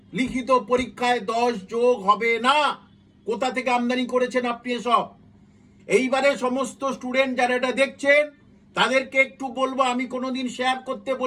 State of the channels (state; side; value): identical; both; correlation 1.00